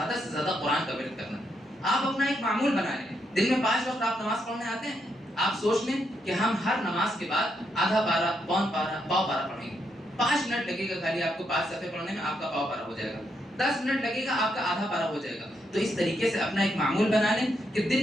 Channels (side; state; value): both; normal; correlation 0.79